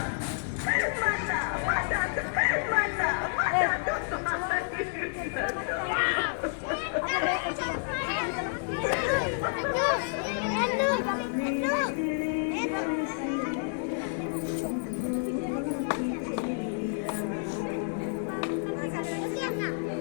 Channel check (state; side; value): silent; right; digital silence